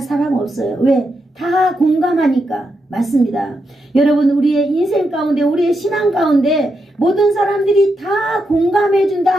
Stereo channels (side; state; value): both; normal; correlation 0.84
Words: 없어요. 왜? 다 공감하니까. 맞습니다. 여러분, 우리의 인생 가운데, 우리의 신앙 가운데 모든 사람들이 다 공감해 준다